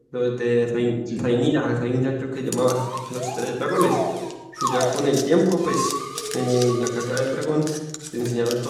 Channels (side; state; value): both; identical; correlation 1.00